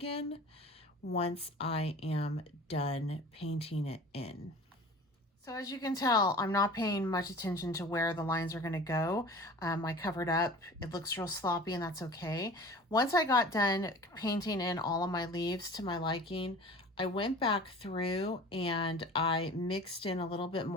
once I am done painting it in. So as you can tell, I'm not paying much attention to where the lines are going to go. I covered up. It looks real sloppy, and that's okay. Once I got done painting in all of my leaves to my liking, I went back through and I mixed in a little bit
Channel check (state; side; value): normal; both; correlation 0.41